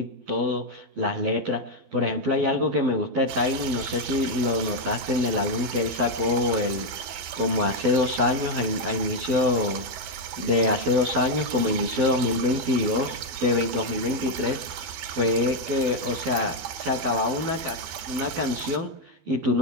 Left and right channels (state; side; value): late; left; 12 ms